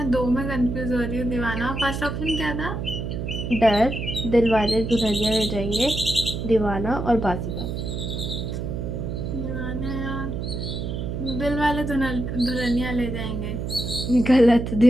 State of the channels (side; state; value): right; noise; hum, 4 dB below the sound